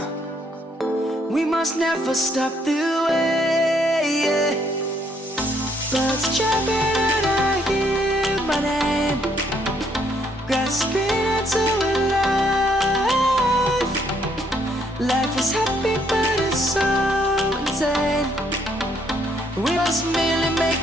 We must never stop the way. Birds chirping and I hear my name, grasping into a life. Life is happy but it's so insane. We must merely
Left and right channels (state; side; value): normal; both; correlation 0.69